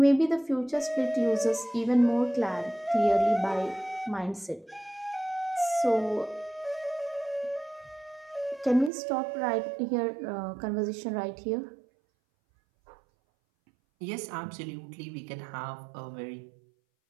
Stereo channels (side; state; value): left; drops out; at 8.9 s